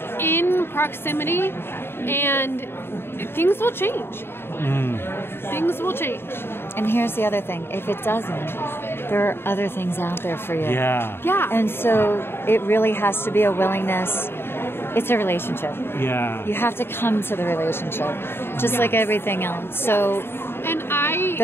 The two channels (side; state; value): right; late; 0.11 ms